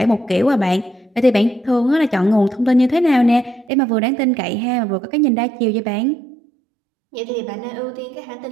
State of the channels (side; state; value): left; drops out; at 3.7 s